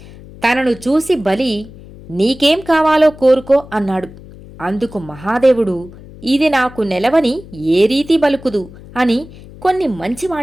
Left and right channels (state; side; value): noise; left; hum, 19 dB below the sound